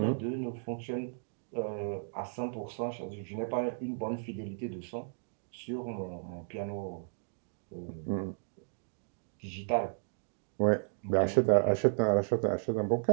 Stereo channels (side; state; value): left; silent; digital silence